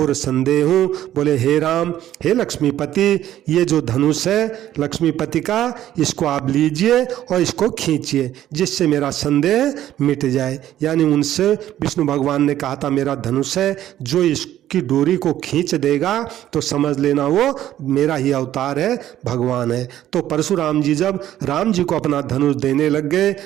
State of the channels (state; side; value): quieter; left; 12.4 dB